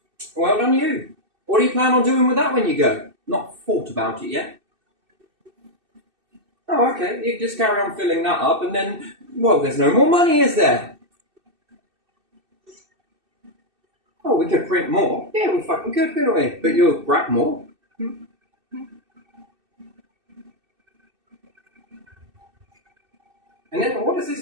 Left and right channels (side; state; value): left; late; 2.6 ms